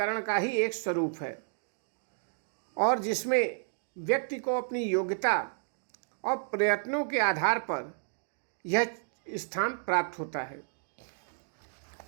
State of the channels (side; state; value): left; silent; digital silence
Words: का ही एक स्वरूप है, और जिसमें व्यक्ति को अपनी योग्यता और प्रयत्नों के आधार पर यह स्थान प्राप्त होता है।